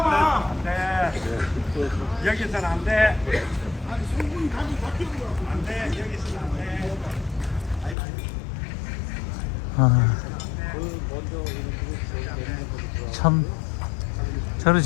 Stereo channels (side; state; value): right; drops out; at 8.0 s